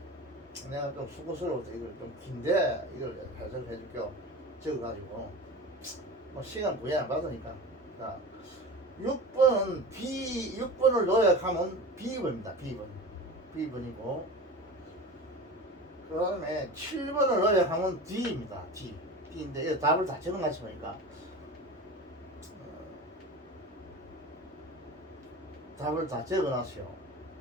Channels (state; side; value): normal; both; correlation 0.32